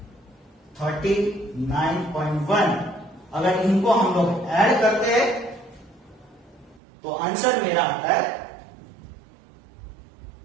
39.1। अगर इनको हम लोग ऐड करते हैं तो आंसर मेरा आता है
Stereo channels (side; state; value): left; drops out; at 6.8 s